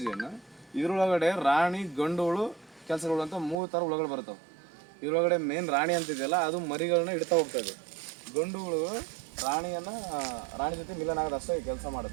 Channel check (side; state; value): left; drops out; at 3.6 s